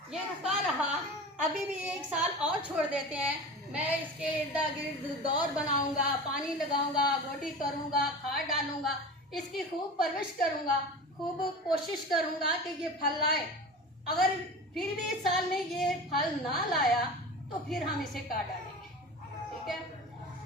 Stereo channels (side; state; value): both; normal; correlation 0.33